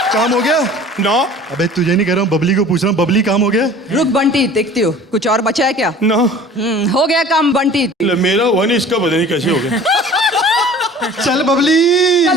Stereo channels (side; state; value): both; normal; correlation 0.45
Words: काम हो गया ना। अबे तुझे नहीं कह रहा हूँ, बबली को पूछ रहा हूँ। बबली काम हो गया? रुक बंटी, देखती हो कुछ और बचा है क्या? ना। हो गया काम बंटी। मेरा हुआ नहीं, इसका पता नहीं कैसे हो गया। चल बबली।